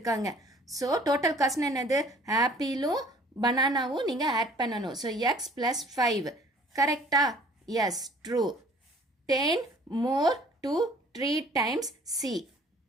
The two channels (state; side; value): normal; both; correlation 0.53